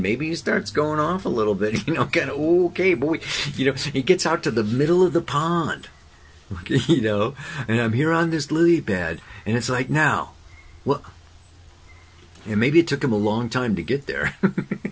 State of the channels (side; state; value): both; identical; correlation 1.00